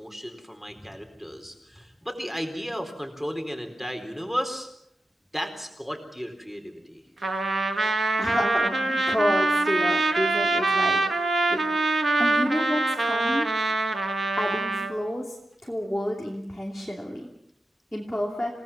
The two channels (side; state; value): both; normal; correlation 0.90